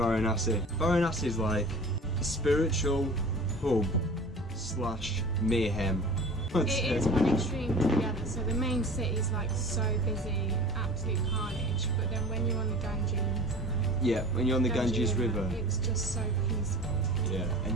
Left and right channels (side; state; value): both; normal; correlation 0.40